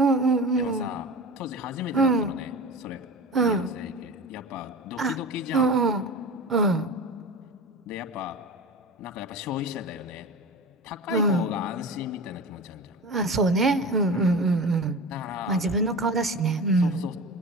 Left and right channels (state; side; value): normal; both; correlation 0.32